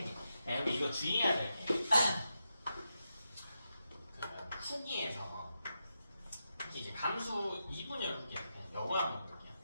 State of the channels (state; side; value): inverted; both; correlation -0.86